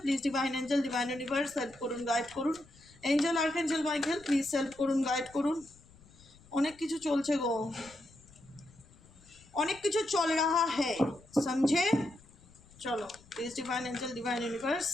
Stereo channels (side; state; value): left; noise; rumble, 25 dB below the sound